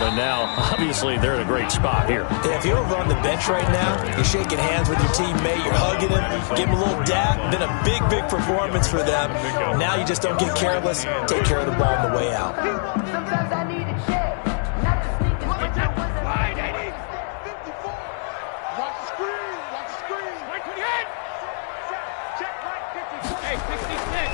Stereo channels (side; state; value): right; silent; digital silence